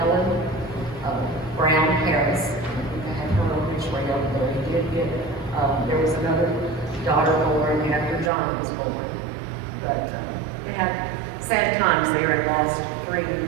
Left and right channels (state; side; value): drops out; left; at 8.3 s